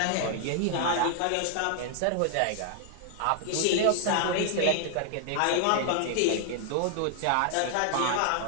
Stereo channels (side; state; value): both; different; correlation 0.00